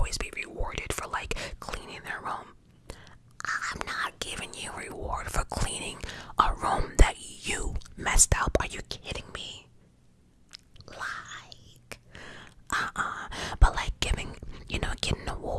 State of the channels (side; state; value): both; identical; correlation 1.00